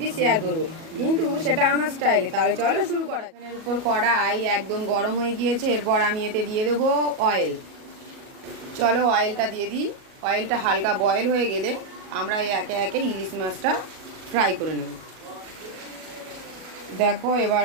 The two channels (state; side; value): late; left; 37 ms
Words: শেয়ার করব, কিন্তু সেটা আমার স্টাইলে। তাহলে চলো শুরু করা। এর উপর কড়াই একদম গরম হয়ে গিয়েছে, এরপর আমি এতে দিয়ে দেবো অয়েল। চলো অয়েলটা দিয়ে দিই। অয়েলটা হালকা বয়েল হয়ে গেলে আমরা একে একে ইলিশ মাছটা ফ্রাই করে নেব। দেখো, এবার